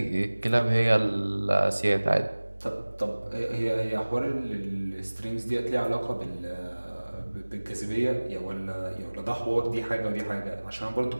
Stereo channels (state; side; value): inverted; both; correlation -1.00